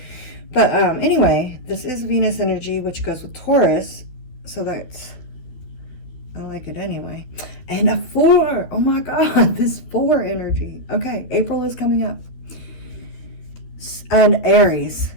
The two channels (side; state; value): right; late; 12 ms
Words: but anyway, this is Venus energy, which goes with Taurus. So that's, I like it anyway. And a 4. Oh my God, this 4 energy. Okay, April is coming up. And Aries.